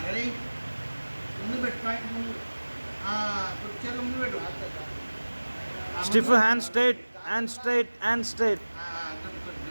రెడీ? ముందు పెట్టు, పాయింట్ ముందు. చేతులు ముందు పెట్టు. Stiff hand straight, hand straight, hand straight.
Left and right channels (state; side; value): inverted; both; correlation -1.00